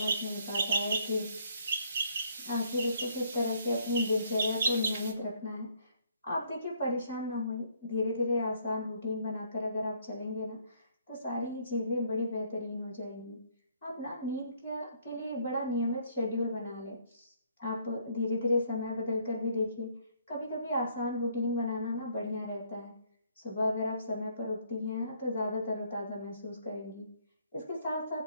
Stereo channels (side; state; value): both; inverted; correlation -0.66